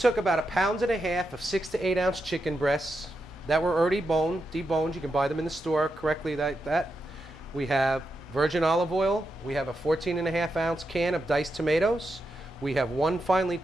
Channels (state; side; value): normal; both; correlation 0.86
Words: about 1.5 pounds of 6 to 8 ounce chicken breasts that were already deboned. You can buy them in the store correctly like that. We have virgin olive oil. We have a 14.5 ounce can of diced tomatoes. We have 1 finely